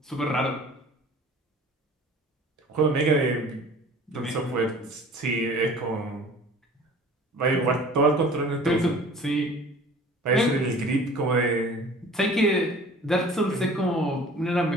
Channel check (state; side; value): normal; both; correlation 0.46